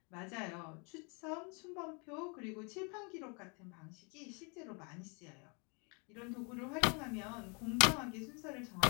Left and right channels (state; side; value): quieter; right; 34.0 dB